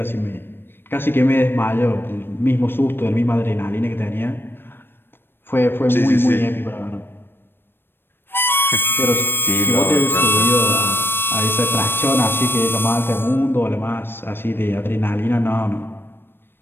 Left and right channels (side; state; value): right; late; 0.10 ms